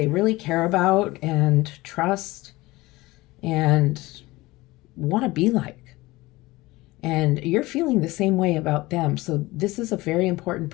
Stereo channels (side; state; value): right; quieter; 20.3 dB